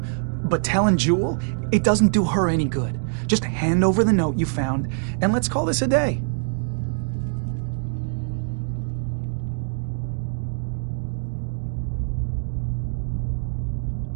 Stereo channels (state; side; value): silent; left; digital silence